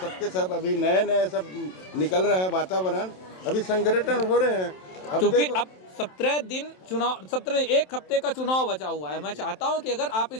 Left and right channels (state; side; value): late; right; 27 ms